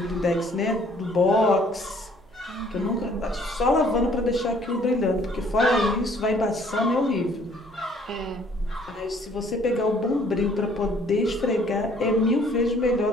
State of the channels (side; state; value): right; noise; hum, 29 dB below the sound